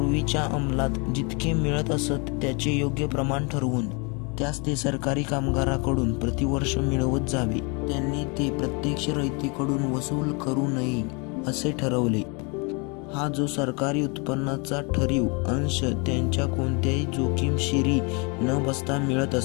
अंमलात जितके मिळत असत त्याचे योग्य प्रमाण ठरवून त्यास ते सरकारी कामगाराकडून प्रतिवर्ष मिळवत जावे. त्यांनी ते प्रत्यक्ष रयतेकडून वसूल करू नये असे ठरवले. हा जो सरकारी उत्पन्नाचा ठरीव अंश त्यांच्या कोणत्याही जोखीमशिरी न बसता मिळत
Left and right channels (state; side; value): quieter; right; 32.1 dB